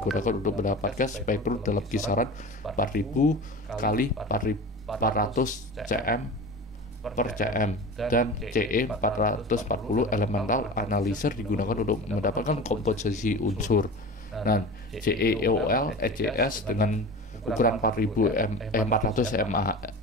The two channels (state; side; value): normal; both; correlation 0.33